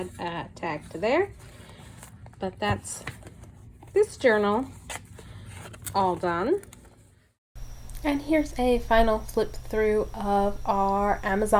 a tag to there. But that's this journal all done. And here's a final flip through of our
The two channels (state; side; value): identical; both; correlation 1.00